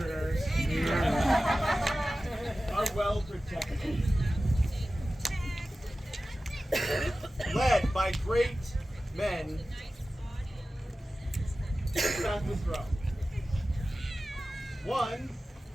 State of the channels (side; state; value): both; normal; correlation 0.95